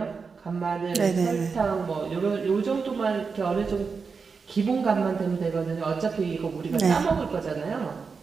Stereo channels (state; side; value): quieter; left; 5.1 dB